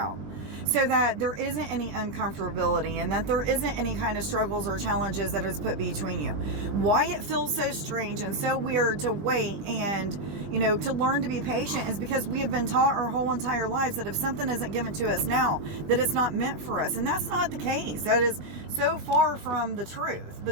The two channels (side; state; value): left; late; 20 ms